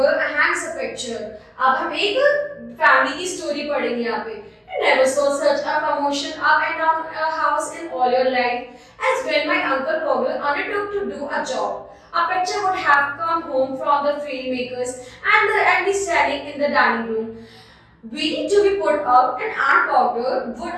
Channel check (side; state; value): both; identical; correlation 1.00